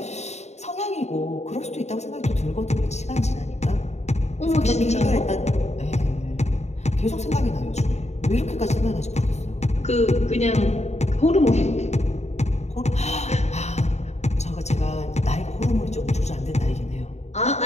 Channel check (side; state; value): right; late; 0.32 ms